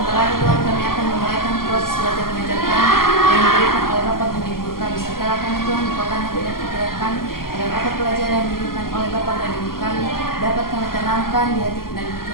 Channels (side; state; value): right; late; 0.92 ms